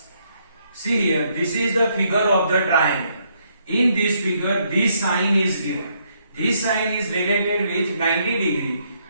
See here, this is the figure of the triangle. In this figure, this sign is given. This sign is related with 90 degree,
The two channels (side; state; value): both; inverted; correlation -0.73